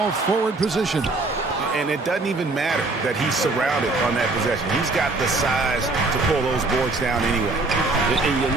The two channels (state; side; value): quieter; left; 3.3 dB